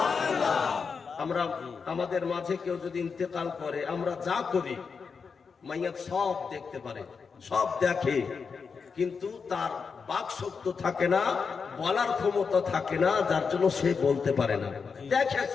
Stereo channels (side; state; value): right; quieter; 5.5 dB